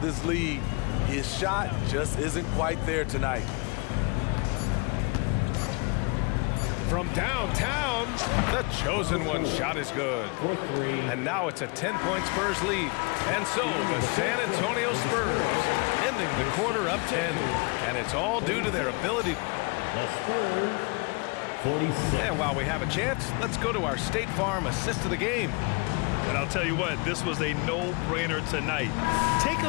lead. His shot just isn't quite there tonight. From downtown, the chosen one shot is good. And now it's a 10-point Spurs lead. And so the San Antonio Spurs ending the quarter up 10. And it's all due to their ability. The Spurs, 46. And while we have a chance, let's go to our State Farm assist of the game. And I'll tell you what, this was a no-brainer tonight. Take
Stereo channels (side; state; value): right; quieter; 30.8 dB